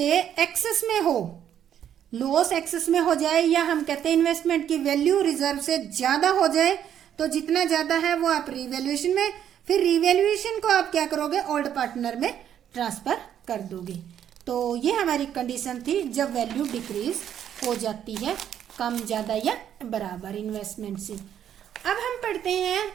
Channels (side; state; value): left; quieter; 9.8 dB